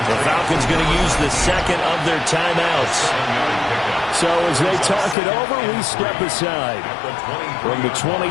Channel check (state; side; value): drops out; right; at 5.2 s